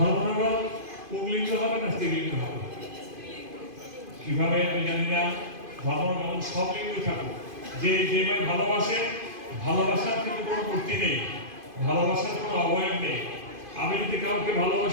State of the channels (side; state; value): left; late; 2.5 ms